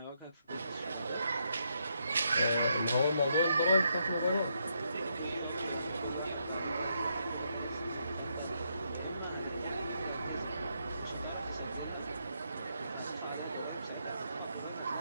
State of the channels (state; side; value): inverted; both; correlation -0.78